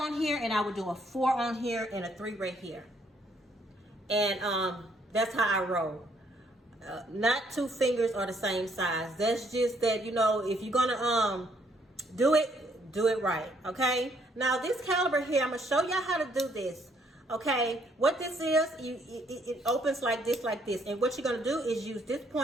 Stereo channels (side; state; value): both; normal; correlation 0.68